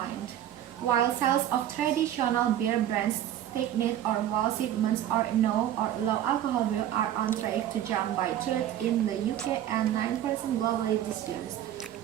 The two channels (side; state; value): left; quieter; 11.6 dB